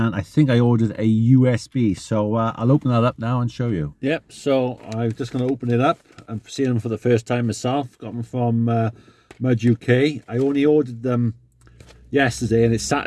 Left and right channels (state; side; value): identical; both; correlation 1.00